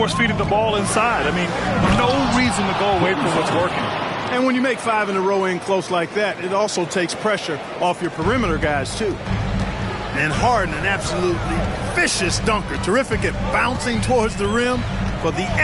the ball inside. I mean, no reason to go away from what's working. And when you make 5 in a row in close like that, it also takes pressure off your perimeter guys, too. And Harden, an absolutely vicious dunker. Terrific at bouncing towards the rim for the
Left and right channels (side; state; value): both; identical; correlation 1.00